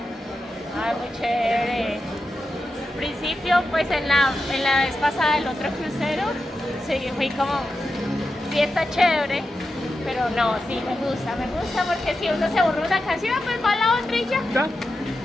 Ay, muy chévere. Al principio, pues en la vez pasada del otro crucero, sí, fui como, sí está chévere, pero no, sí me gusta porque si uno se aburre una canción, pues va a la otra y ya.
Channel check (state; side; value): normal; both; correlation 0.90